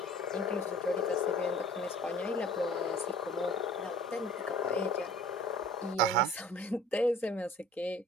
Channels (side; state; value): both; normal; correlation 0.47